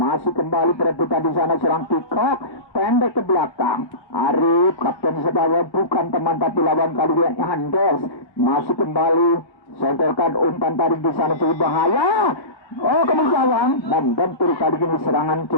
kembali perebutan di sana serang Kikok, pendek ke belakang, Arif, kapten sebaya bukan teman tapi lawan kali ini Andes, masih kembali, sodorkan umpan tarik di sana cukup bahaya. Oh, kemudian membentur kali ini serangan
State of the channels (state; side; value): late; right; 1.3 ms